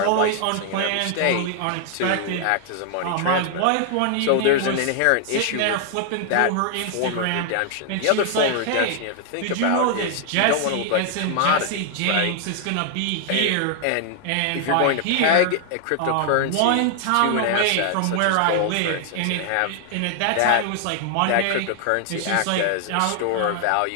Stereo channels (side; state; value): both; different; correlation 0.00